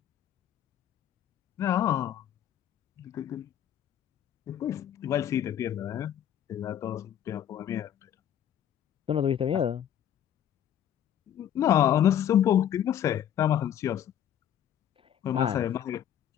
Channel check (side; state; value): right; quieter; 10.2 dB